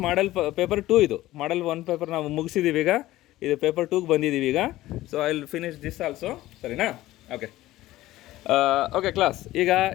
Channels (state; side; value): quieter; right; 16.2 dB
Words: ಮಾಡಲ್ ಪೇಪರ್ 2. ಇದು ಮಾಡಲ್ 1 ಪೇಪರ್ ನಾವು ಮುಗಿಸಿದ್ದೀವಿ ಈಗ. ಇದು ಪೇಪರ್ 2ಗೆ ಬಂದಿದ್ದೀವಿ ಈಗ. So I will finish this also. ಸರಿನಾ? ಓಕೆ ಓಕೆ ಕ್ಲಾಸ್, ಈಗ